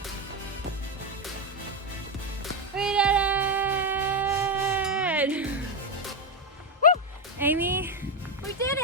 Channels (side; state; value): both; normal; correlation 0.08